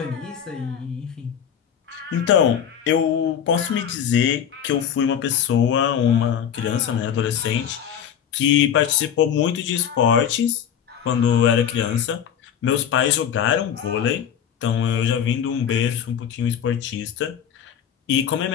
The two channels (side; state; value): right; quieter; 8.8 dB